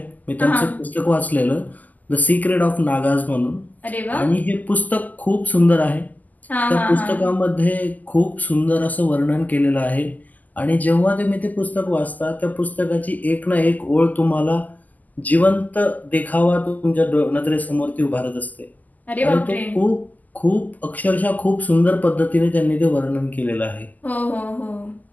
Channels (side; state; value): right; late; 0.081 ms